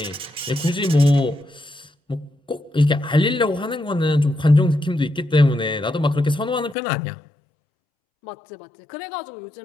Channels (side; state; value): right; drops out; at 6.8 s